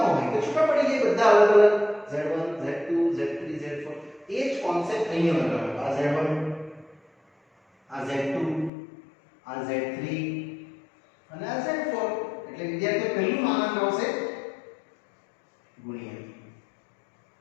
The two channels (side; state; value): right; drops out; at 8.7 s